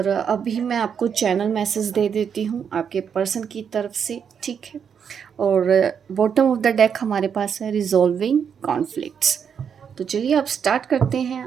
अभी मैं आपको चैनल मैसेज दे देती हूँ आपके पर्सन की तरफ से, ठीक है। और बॉटम ऑफ द डेक हमारे पास है रिजॉल्विंग कॉन्फ्लिक्ट्स। तो चलिए अब स्टार्ट करते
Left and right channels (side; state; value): left; quieter; 7.3 dB